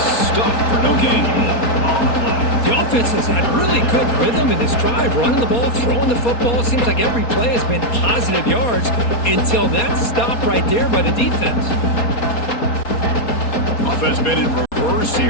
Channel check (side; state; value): right; late; 4.2 ms